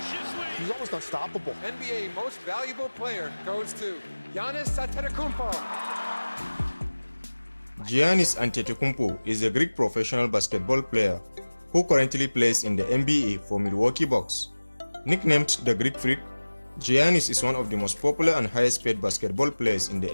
He's almost unstoppable. NBA most valuable player goes to Giannis Antetokounmpo. Giannis Antetokounmpo is a Greek professional basketball player who currently plays in the NBA for Milwaukee Bucks. Nicknamed the Greek Freak, Giannis is one of the most popular and highest paid basketball players in the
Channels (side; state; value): both; inverted; correlation -1.00